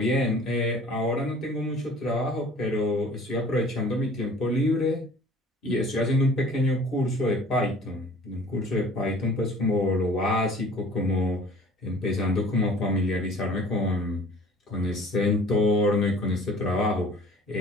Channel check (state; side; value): normal; both; correlation 0.49